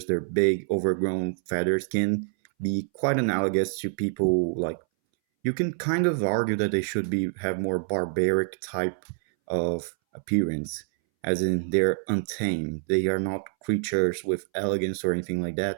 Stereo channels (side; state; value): left; silent; 61 dB below the other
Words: their big overgrown feathers can be quite analogous to people like you can kind of argue that they should be have more barbaric type of appearance, as in they're untamed. They are not creatures with elegance or anything like